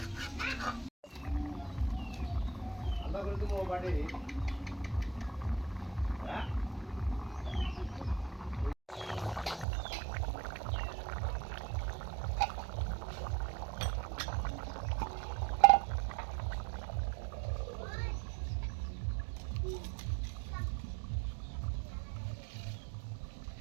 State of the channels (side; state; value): left; drops out; at 9.7 s